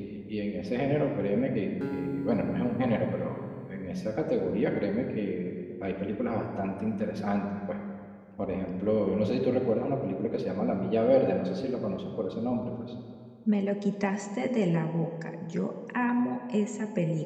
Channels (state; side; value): identical; both; correlation 1.00